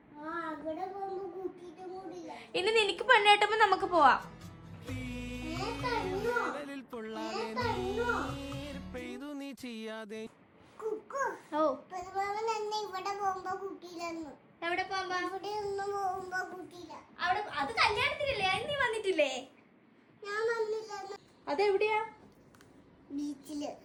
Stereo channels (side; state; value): both; identical; correlation 1.00